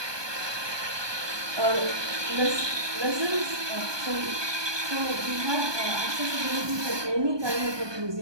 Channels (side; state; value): left; late; 1.2 ms